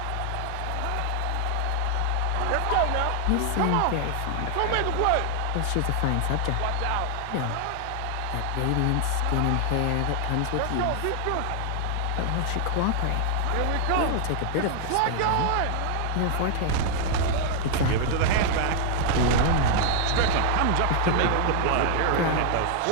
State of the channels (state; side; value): different; both; correlation 0.00